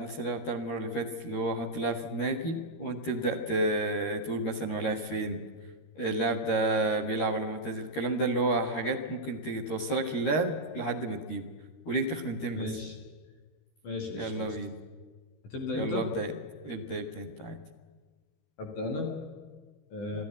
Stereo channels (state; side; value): late; right; 13 ms